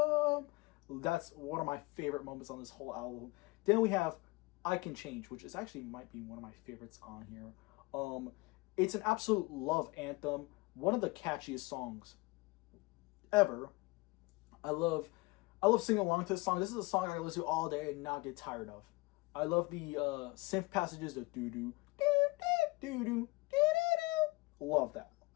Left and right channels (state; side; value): quieter; right; 24.0 dB